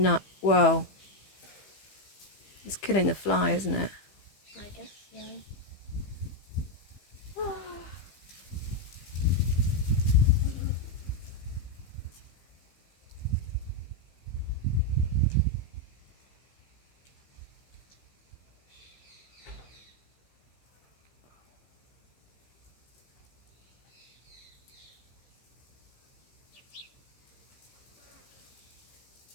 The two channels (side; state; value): right; late; 15 ms